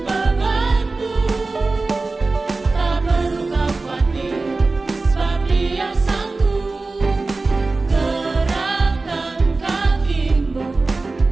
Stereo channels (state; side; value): quieter; left; 3.5 dB